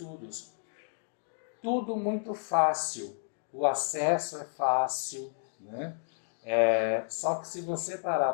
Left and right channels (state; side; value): silent; right; digital silence